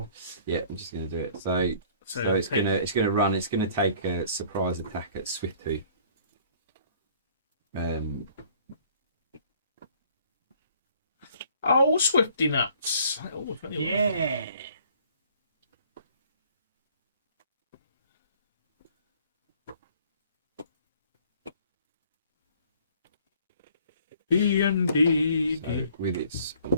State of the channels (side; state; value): both; inverted; correlation -0.56